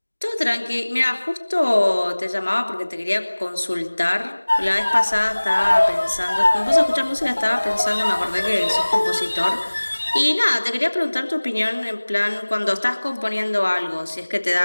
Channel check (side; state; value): both; inverted; correlation -1.00